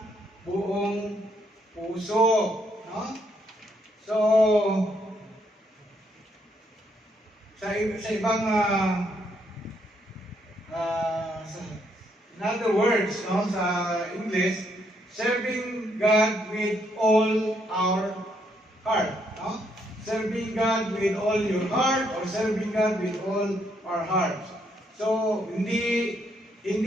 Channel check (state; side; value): normal; both; correlation 0.73